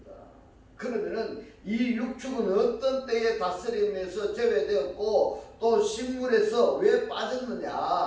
그러면은 이 육축은 어떤 때에 다스림에서 제외되었고 또 식물에서 왜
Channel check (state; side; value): identical; both; correlation 1.00